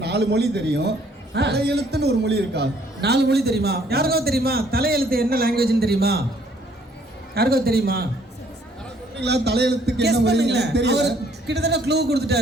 4 மொழி தெரியும். தலையெழுத்துன்னு ஒரு மொழி இருக்கா? 4 மொழி தெரியுமா? யாருக்கோ தெரியுமா? தலையெழுத்து என்ன லாங்குவேஜ்னு தெரியுமா? யாருக்கோ தெரியுமா? தலையெழுத்துக்கு என்ன மொழி தெரியல. கிட்டத்தட்ட க்ளூ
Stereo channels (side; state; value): both; normal; correlation 0.63